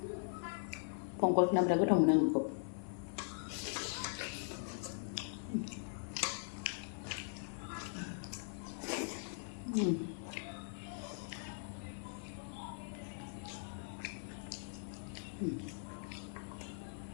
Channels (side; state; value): right; silent; 51 dB below the other